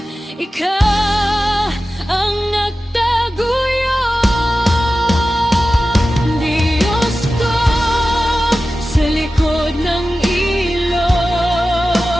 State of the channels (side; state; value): both; normal; correlation 0.94